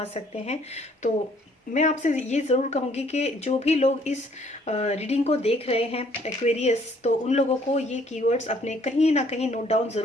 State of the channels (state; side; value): normal; both; correlation 0.62